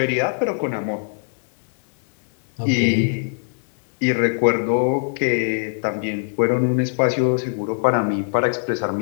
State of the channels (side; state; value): right; silent; digital silence